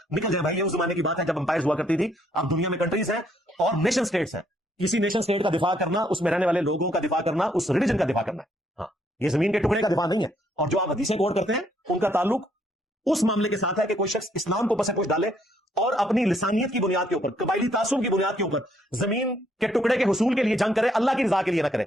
نکل جائے بھائی۔ یہ اس زمانے کی بات ہے جب امپائرز ہوا کرتی تھی، اب دنیا میں کنٹریز ہیں اور نیشن سٹیٹس ہیں، کسی نیشن سٹیٹ کا دفاع کرنا، اس میں رہنے والے لوگوں کا دفاع کرنا، اس ریلیجن کا دفاع کرنا ہے، ہاں یہ زمین کے ٹکڑے کا دفاع نہیں ہے۔ اور جو آپ حدیثیں کوٹ کرتے ہیں ان کا تعلق اس معاملے کے ساتھ ہے کہ کوئی شخص اسلام کو پس پوش ڈالے اور اپنی لسانیت کی بنیاد کے اوپر، قبائلی تعصب کی بنیاد کے اوپر زمین کے ٹکڑے کے حصول کے لیے جنگ کرے، اللہ کی رضا کے لیے نہ کرے۔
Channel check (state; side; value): normal; both; correlation 0.70